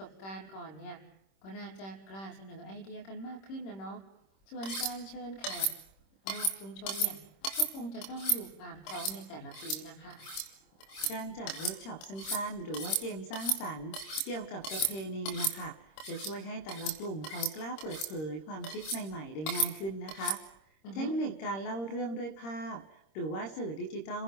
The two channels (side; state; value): right; late; 26 ms